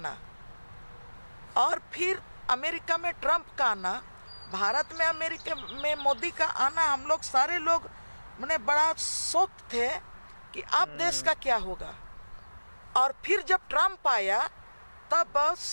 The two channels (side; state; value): both; inverted; correlation -1.00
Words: और फिर अमेरिका में ट्रम्प का आना, भारत में अमेरिका में मोदी का आना, हम लोग सारे लोग मैंने बड़ा शौक थे कि अब देश का क्या होगा। और फिर जब ट्रम्प आया तब